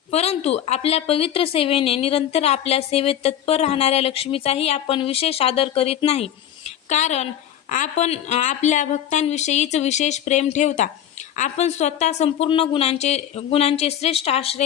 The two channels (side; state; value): right; quieter; 10.6 dB